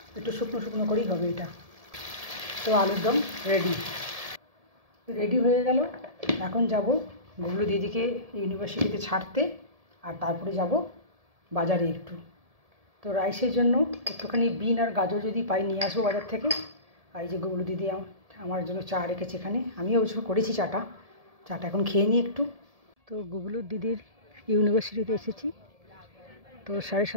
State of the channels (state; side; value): late; left; 1.7 ms